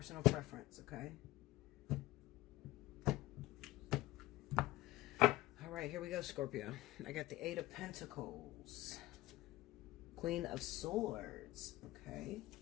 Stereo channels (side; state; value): right; quieter; 17.3 dB